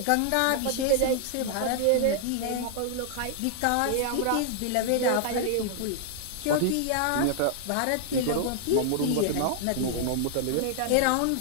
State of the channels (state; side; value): different; both; correlation 0.00